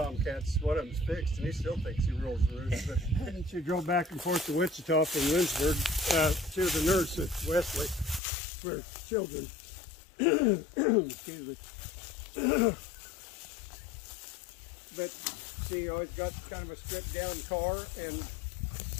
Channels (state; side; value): drops out; right; at 8.2 s